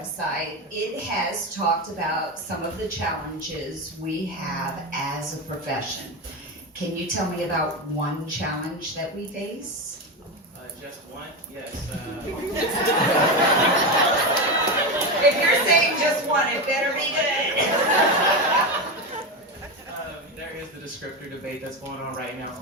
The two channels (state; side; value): normal; both; correlation 0.16